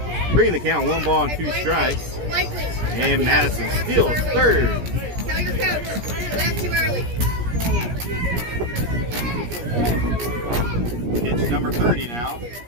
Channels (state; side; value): late; left; 17 ms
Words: Bringing the count 1 ball and 2 strikes. And Madison steals third. Tell your coach, left too early. Pitch number 30 now